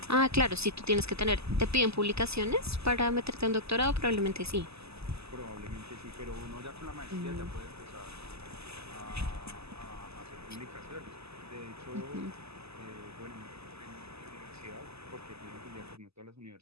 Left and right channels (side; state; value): left; late; 0.79 ms